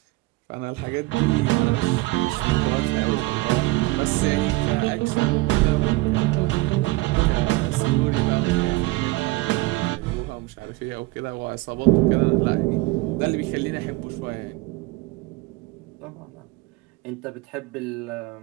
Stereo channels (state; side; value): quieter; left; 21.3 dB